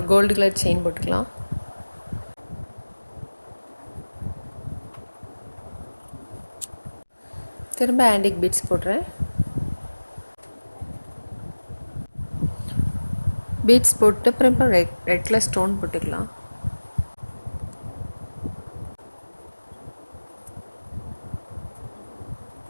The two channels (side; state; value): both; inverted; correlation -1.00